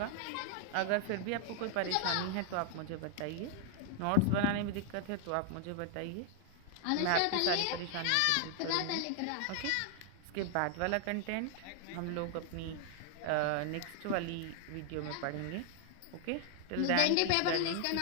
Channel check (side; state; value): both; different; correlation 0.00